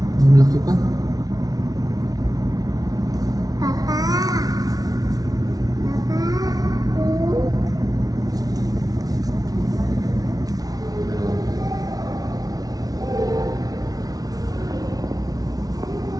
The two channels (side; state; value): left; late; 0.18 ms